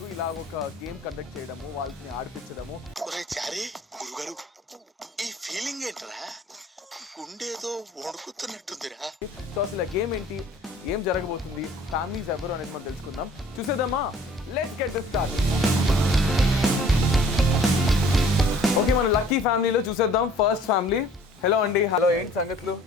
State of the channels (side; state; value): both; normal; correlation 0.53